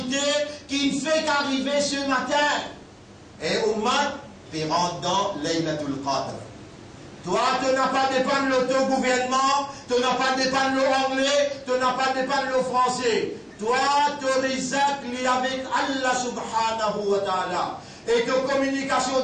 qui ne fait qu'arriver ce matin. Et Oumad, tu rentres dans Laylatul Qadr. Toi, tu n'as pas dépendre de l'autogouvernement, tu n'as pas dépendre de l'anglais, tu n'as pas dépendre de le français. Toi, tu risques avec Allah subhanahu wa ta'ala. Et que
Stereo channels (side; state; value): both; identical; correlation 1.00